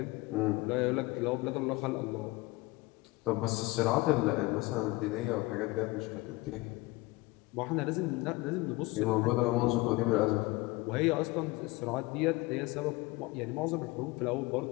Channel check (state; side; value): quieter; right; 21.6 dB